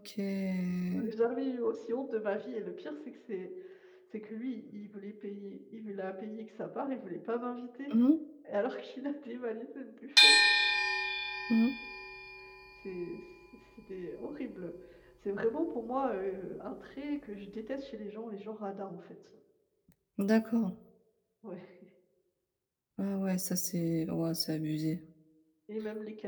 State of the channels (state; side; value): identical; both; correlation 1.00